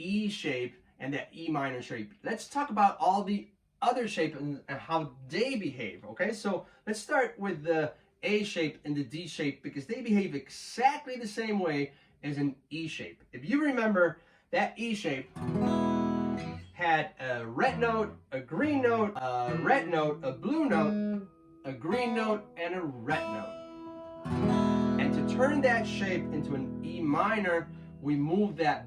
shape and that E minor shape. Let's talk about all the other shapes and how they behave, okay? So let's start with the A shape and the D shape because they behave exactly the same way as an E shape. If you remember, that E shape had a red note, a green note, a red note, a blue note, a green note, and a red note. And to turn that shape into an E minor, we moved that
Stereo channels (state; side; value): identical; both; correlation 1.00